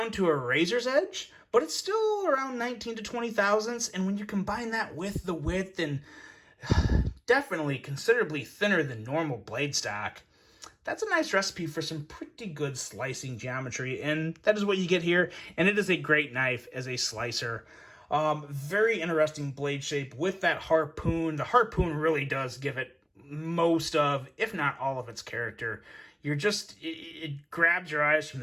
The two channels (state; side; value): identical; both; correlation 1.00